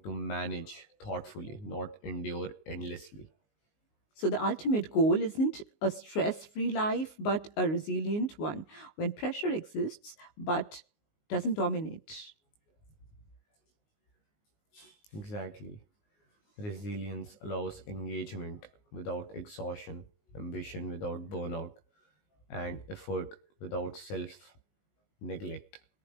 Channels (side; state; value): right; late; 19 ms